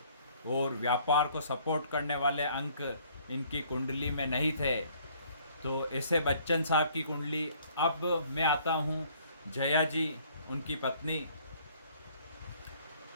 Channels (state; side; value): inverted; both; correlation -0.59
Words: और व्यापार को सपोर्ट करने वाले अंक इनकी कुंडली में नहीं थे। तो ऐसे बच्चन साहब की कुंडली। अब मैं आता हूँ जया जी, उनकी पत्नी।